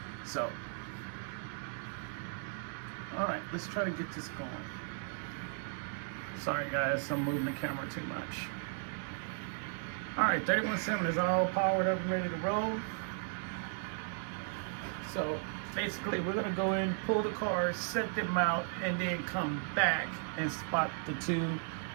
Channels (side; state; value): left; silent; 54 dB below the other